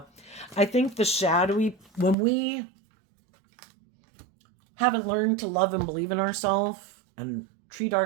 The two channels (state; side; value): drops out; left; at 2.1 s